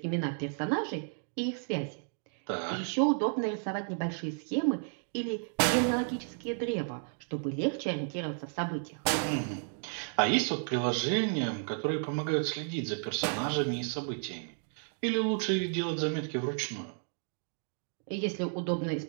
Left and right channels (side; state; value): left; silent; 56 dB below the other